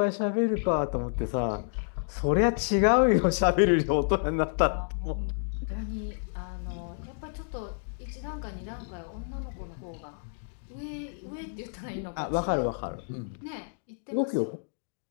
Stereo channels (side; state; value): right; silent; digital silence